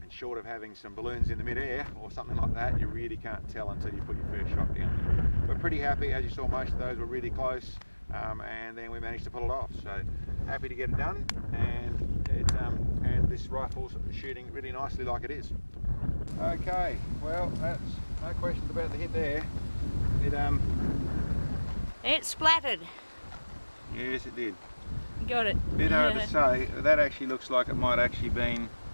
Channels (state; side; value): inverted; both; correlation -1.00